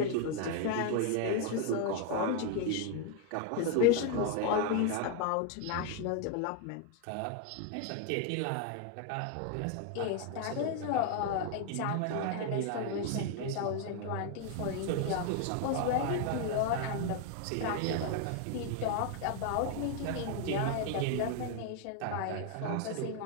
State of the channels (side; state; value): both; different; correlation 0.01